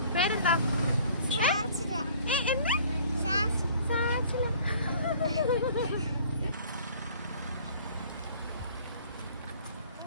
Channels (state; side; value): inverted; both; correlation -0.52